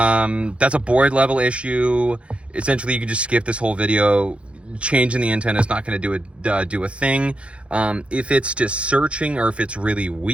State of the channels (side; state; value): left; late; 0.060 ms